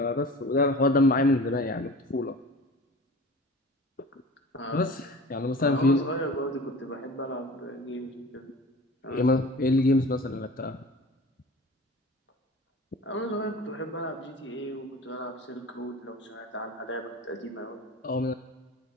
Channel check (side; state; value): both; normal; correlation 0.39